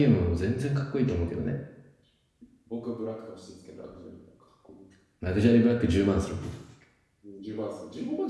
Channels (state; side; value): identical; both; correlation 1.00